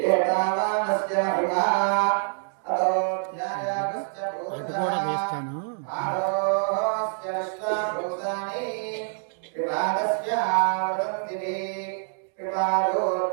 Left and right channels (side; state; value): left; silent; digital silence